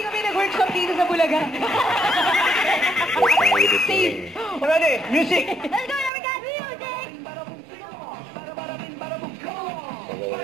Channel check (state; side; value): drops out; left; at 6.1 s